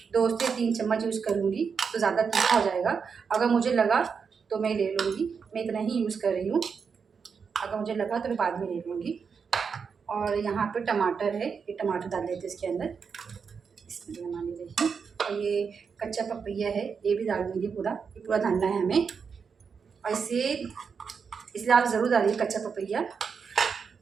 2 से 3 चम्मच यूज़ करूँगी, तो ज़्यादा तीखा हो जाएगा। अगर मुझे लगा तो मैं ले लूँगी, मैं इतना ही यूज़ कर रही हूँ। अगर मुझे लगा तो मैं बाद में ले लूँगी। और यहाँ पे टमाटर है, ये टमाटर डाल देते हैं इसके अंदर। इसमें हमारी देखिए, और ये कच्चा पपैया है, ये भी डाल दूँगी पूरा, ये पूरा डालना है हमें। और इसलिए आप ज़रूर डालिए कच्चा पपैया।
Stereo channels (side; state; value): left; quieter; 6.0 dB